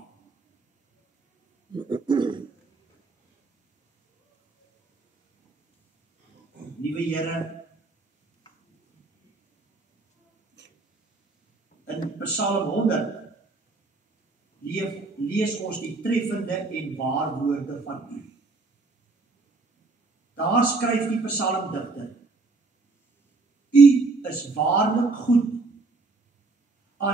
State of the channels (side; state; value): left; quieter; 3.7 dB